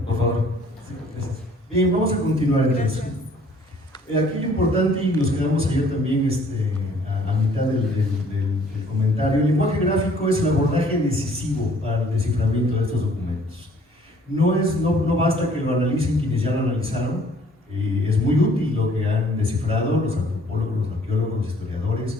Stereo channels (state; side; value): normal; both; correlation 0.58